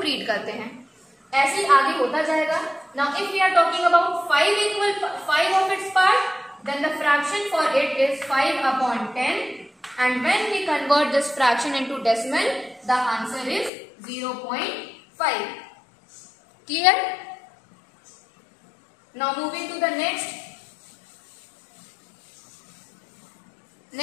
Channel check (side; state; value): right; drops out; at 13.7 s